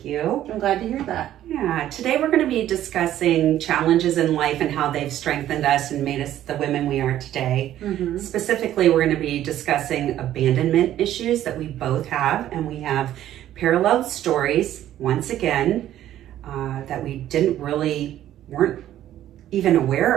you. I'm glad to hear that. Yeah, today we're going to be discussing challenges in life and how they've strengthened us and made us the women we are today. Mm-hmm. Specifically, we're going to be discussing abandonment issues that we both have, and we have parallel stories, once again, that we weren't even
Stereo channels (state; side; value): quieter; left; 12.4 dB